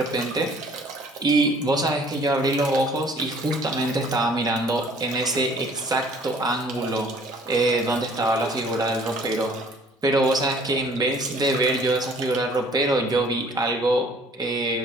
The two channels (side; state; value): both; normal; correlation 0.55